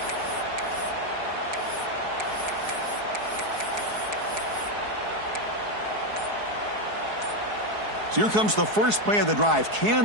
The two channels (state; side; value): late; left; 4.7 ms